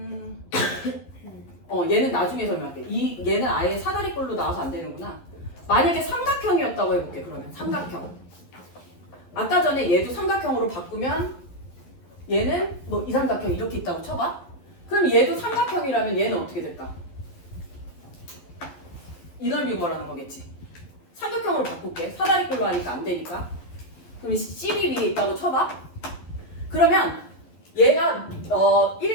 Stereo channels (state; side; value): late; right; 11 ms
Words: 얘는 나중에 설명할게. 얘는 아예 사다리꼴로 나와서 안 되는구나. 만약에 삼각형이었다고 해볼게. 그러면 삼각형. 아까 전에 얘도 삼각형으로 바꾸면 얘는 뭐 이 삼각형 이렇게 있다고 쳐봐. 그럼 얘도 삼각형이라면 얘는 어떻게 될까? 이 넓이 구하라는 거겠지. 삼각형으로 바꿀게. 사다리꼴로 하니까 안 되니까. 그럼 CB 위에 있다고 쳐봐. 그러면 얘가